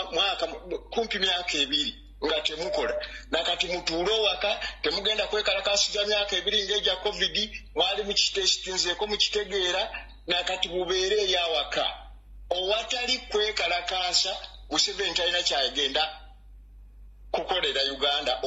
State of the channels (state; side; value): identical; both; correlation 1.00